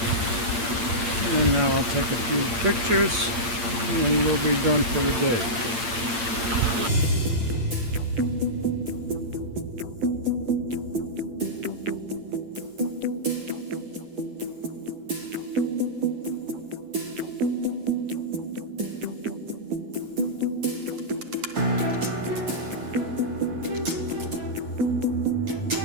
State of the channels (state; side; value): late; left; 8.7 ms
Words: And now I'll take a few pictures and we'll be done for the day.